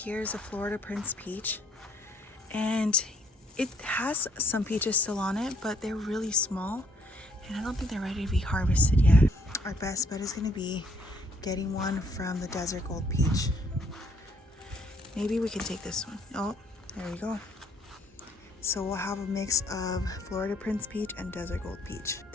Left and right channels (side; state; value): both; normal; correlation 0.67